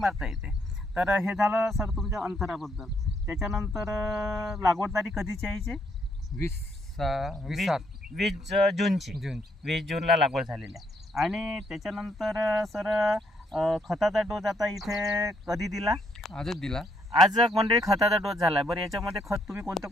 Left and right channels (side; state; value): both; normal; correlation 0.72